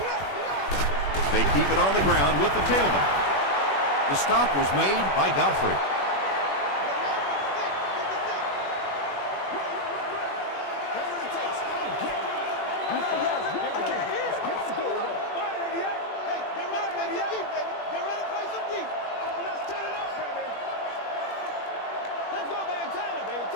They keep it on the ground with the tailback. The stop was made by Godfrey.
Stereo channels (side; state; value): right; late; 21 ms